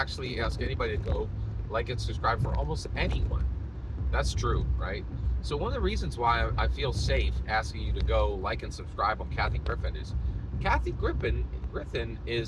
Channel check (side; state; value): both; identical; correlation 1.00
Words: ask anybody to go like and subscribe for almost anyone. That's true, right? So one of the reasons why I feel safe asking you to go like and subscribe on Kathy Griffin is Kathy Griffin